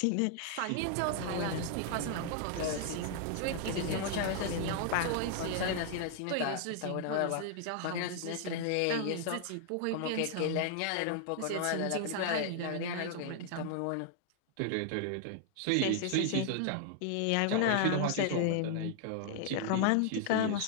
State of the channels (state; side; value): different; both; correlation 0.00